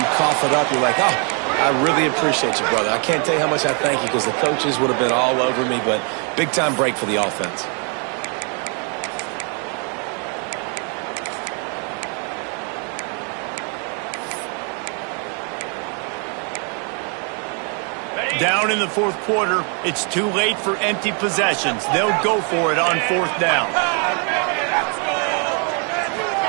cough it up, you're like, oh, I really appreciate you, brother. I can't tell you how much I thank you because the coaches would have been all over me, but big-time break for the offense. Down in the fourth quarter, it's too late for empty possessions. They'll go for it on 4th down.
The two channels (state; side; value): quieter; left; 38.5 dB